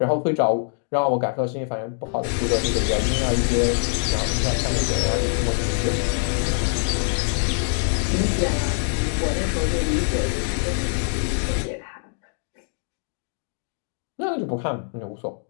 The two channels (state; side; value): silent; right; digital silence